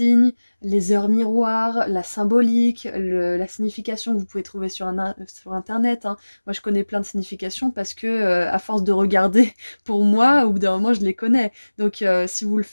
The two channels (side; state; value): both; inverted; correlation -1.00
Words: les heures miroirs, la symbolique, la signification que vous pouvez trouver sur internet, hein. Moi je connais plein de significations parce que à force de regarder, pour moi au bout d'un moment je les connais. Donc si vous le